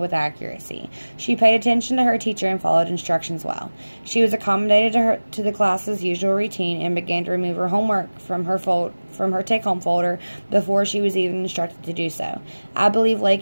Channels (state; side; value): inverted; both; correlation -1.00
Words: accuracy. She paid attention to her teacher and followed instructions well. She was accommodated to the class's usual routine and began to remove her homework from her take-home folder before she was even instructed to do so. I believe